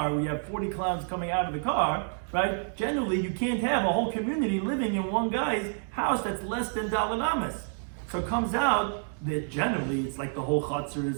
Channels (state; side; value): silent; left; 59 dB below the other